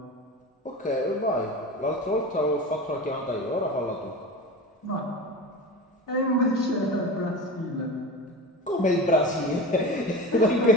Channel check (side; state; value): both; normal; correlation 0.30